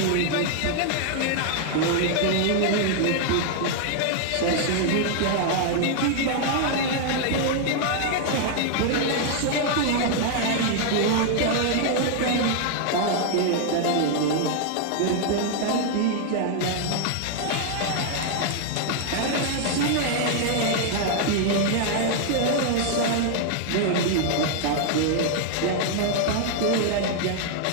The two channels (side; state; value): both; different; correlation 0.00